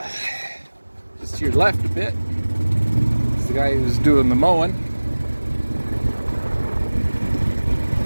just to your left a bit, is the guy who's doing the mowing.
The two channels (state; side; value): inverted; both; correlation -1.00